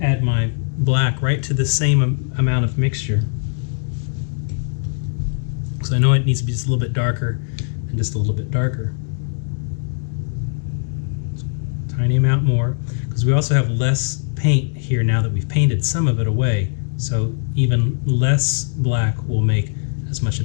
add my black right to the same amount of mixture. So I know it needs to be just a little bit darker and just a little bit darker. Tiny amount more, because we also have less paint here now that we've painted some of it away. So even less black will make as much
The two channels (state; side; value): silent; right; digital silence